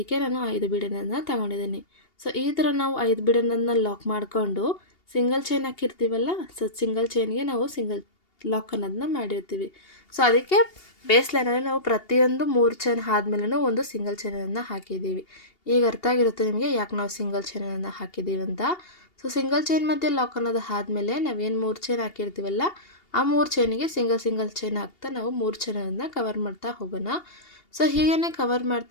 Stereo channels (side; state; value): right; late; 2.8 ms